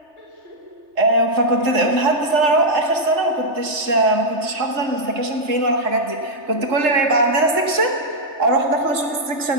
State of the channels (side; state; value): left; late; 3.3 ms